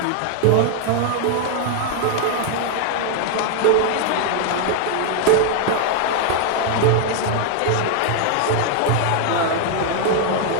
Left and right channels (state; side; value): different; both; correlation 0.00